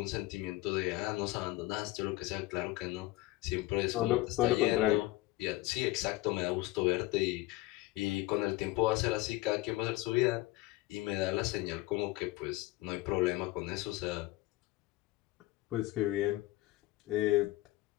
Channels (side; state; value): right; quieter; 18.6 dB